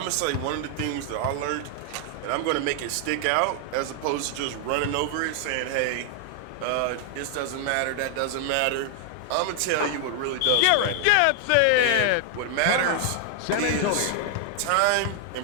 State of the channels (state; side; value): different; both; correlation 0.00